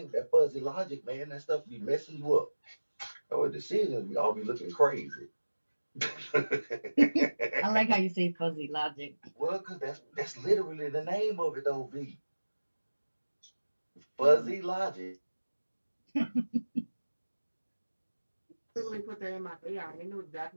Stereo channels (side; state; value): both; inverted; correlation -1.00